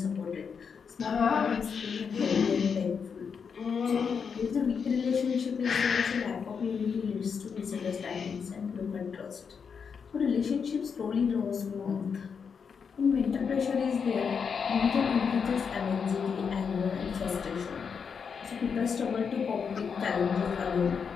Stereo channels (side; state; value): right; quieter; 6.3 dB